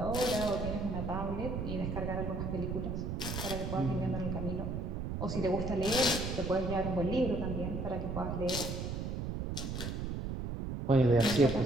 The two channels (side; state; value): right; noise; rumble, 3 dB below the sound